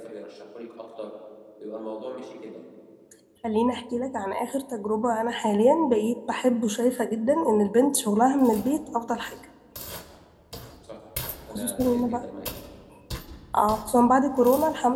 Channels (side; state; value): both; identical; correlation 1.00